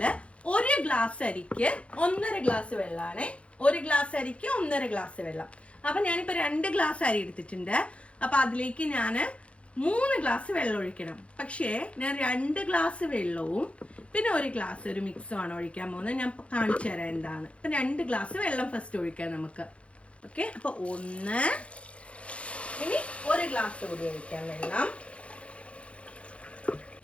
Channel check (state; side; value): late; right; 0.061 ms